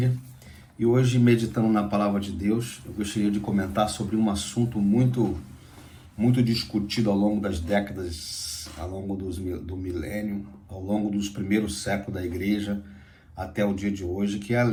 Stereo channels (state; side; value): identical; both; correlation 1.00